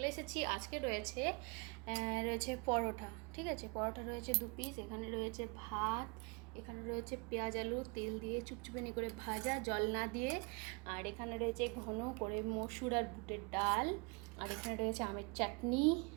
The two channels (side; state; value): left; quieter; 30.7 dB